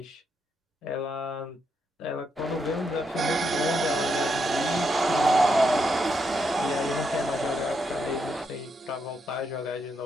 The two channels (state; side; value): normal; both; correlation 0.80